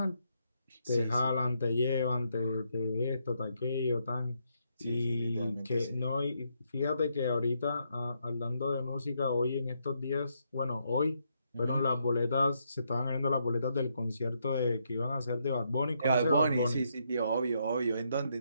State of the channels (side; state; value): both; inverted; correlation -0.77